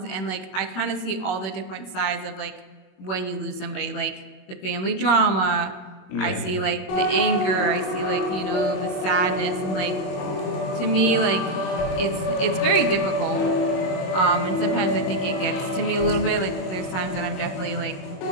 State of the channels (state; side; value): late; right; 22 ms